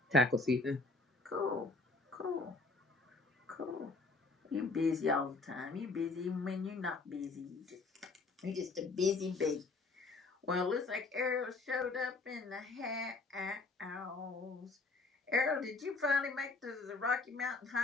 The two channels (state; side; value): quieter; right; 3.6 dB